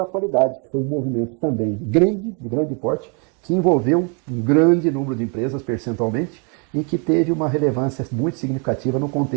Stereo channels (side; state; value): left; quieter; 36.9 dB